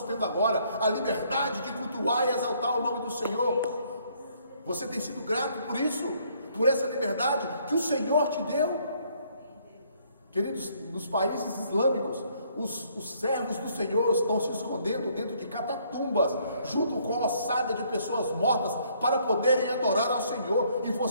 tendo agora, a liberdade de cultuar e exaltar o nome do Senhor. Você tem sido grato por isso, por essa liberdade que o Senhor te deu? Queridos, nos países islâmicos, os servos do Senhor estão se escondendo dentro de catatumbas, junto com a ossada de pessoas mortas, para poderem adorar ao Senhor. E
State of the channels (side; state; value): both; inverted; correlation -0.66